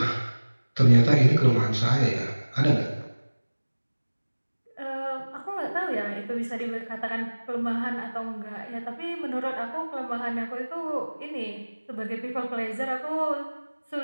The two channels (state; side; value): inverted; both; correlation -1.00